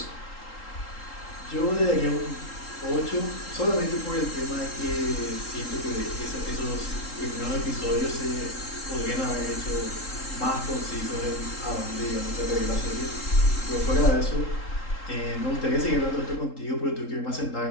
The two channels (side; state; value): right; late; 3.8 ms